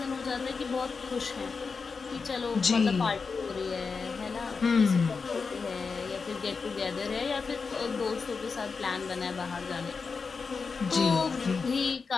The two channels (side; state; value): right; quieter; 4.9 dB